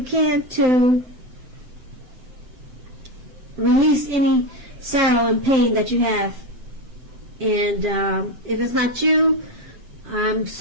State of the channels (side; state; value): left; late; 7.8 ms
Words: can to release any sorrow and pain that you have. And if it's not you, I'm